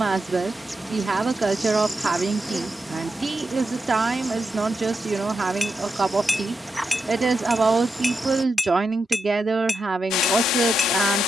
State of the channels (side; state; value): both; normal; correlation 0.86